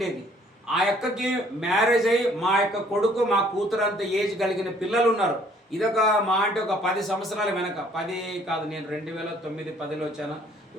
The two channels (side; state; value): both; normal; correlation 0.60